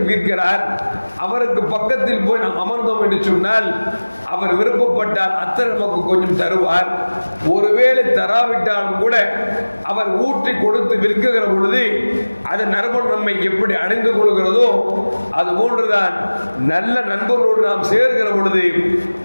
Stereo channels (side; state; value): both; inverted; correlation -1.00